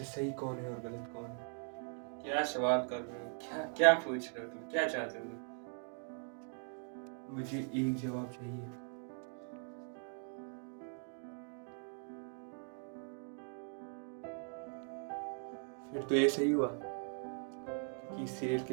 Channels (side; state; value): left; silent; 51 dB below the other